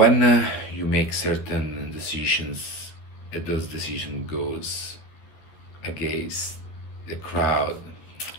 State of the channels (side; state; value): right; late; 13 ms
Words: you make certain decisions, and those decisions goes against the crowd,